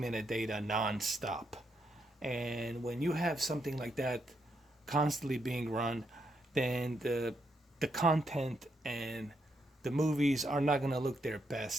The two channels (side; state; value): both; normal; correlation 0.79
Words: non-stop. And when you have something like that constantly being run, then the content and the movies are not going to look their